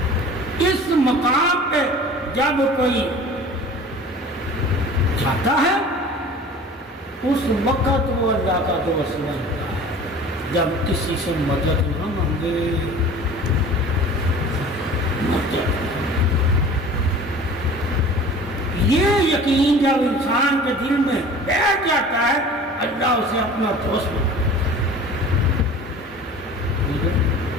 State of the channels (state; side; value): normal; both; correlation 0.43